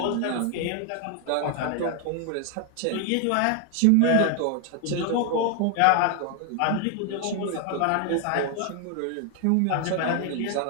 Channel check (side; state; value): both; different; correlation 0.01